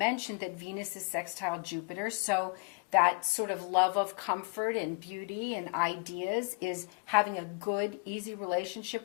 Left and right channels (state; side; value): quieter; right; 32.4 dB